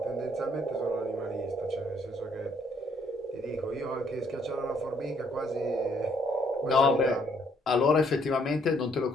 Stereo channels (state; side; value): normal; both; correlation 0.67